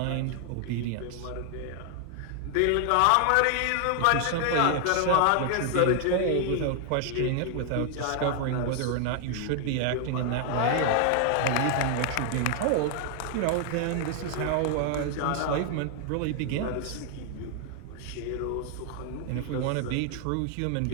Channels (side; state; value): both; different; correlation 0.00